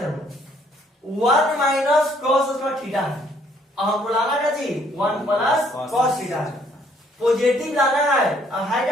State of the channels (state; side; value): normal; both; correlation 0.65